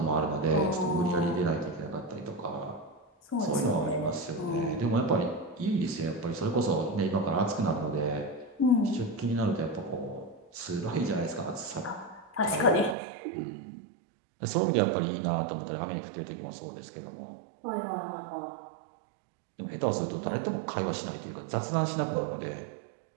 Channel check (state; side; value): drops out; left; at 13.0 s